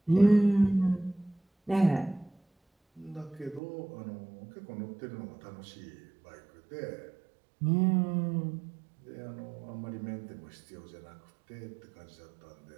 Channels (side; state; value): left; drops out; at 3.6 s